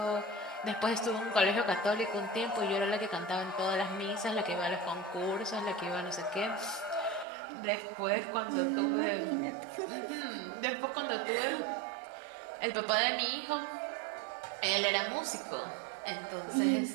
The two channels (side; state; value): left; drops out; at 7.2 s